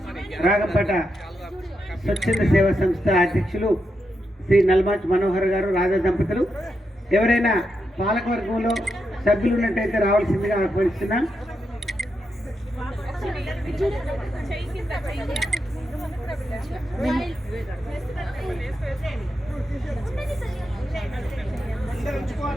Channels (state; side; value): normal; both; correlation 0.85